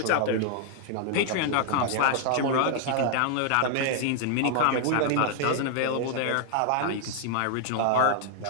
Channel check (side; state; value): both; different; correlation 0.00